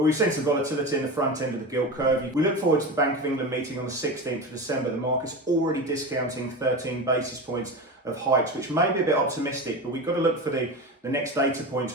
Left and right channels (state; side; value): normal; both; correlation 0.25